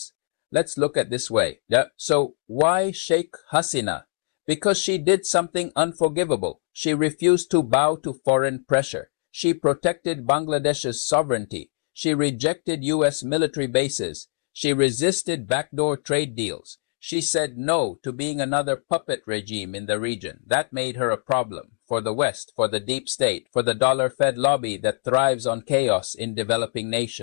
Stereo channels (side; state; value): right; silent; digital silence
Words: Let's look at this way. So why Sheikh Hasina? Because she did something unforgivable. She refused to bow to foreign pressure. She protected Bangladesh's sovereignty. She rejected U.S. military bases. She resisted backdoor trade deals. She said no to being another puppet regime in the region. That made her a problem for the West, for the deep state, for the dollar-fed lobby that thrives on chaos in developing